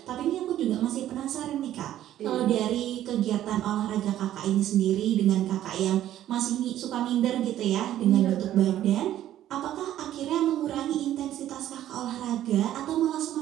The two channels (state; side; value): quieter; left; 12.4 dB